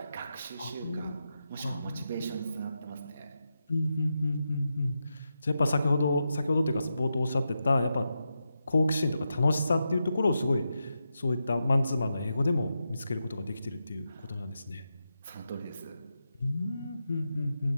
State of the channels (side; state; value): both; inverted; correlation -0.88